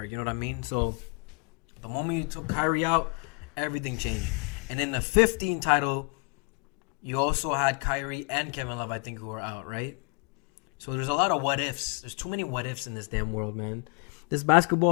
You know what I mean? So the moment you took Kyrie out, everything changed. And in the 15 title, you also had Kyrie and Kevin Love, I think, who were out, right? So there's a lot of what ifs. There's too many what ifs in this damn world, man. This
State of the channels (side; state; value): right; quieter; 34.1 dB